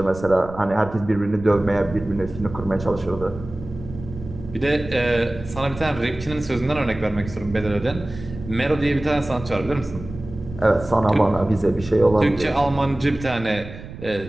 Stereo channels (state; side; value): noise; right; rumble, 13 dB below the sound